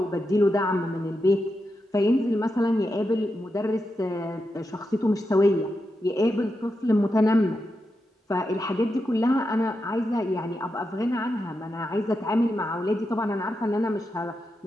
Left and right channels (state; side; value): normal; both; correlation 0.87